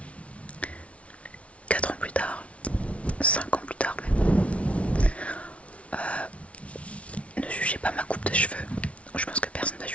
4 ans plus tard, 5 ans plus tard même. Ne jugez pas ma coupe de cheveux. Je pense que personne ne va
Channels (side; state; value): right; late; 0.063 ms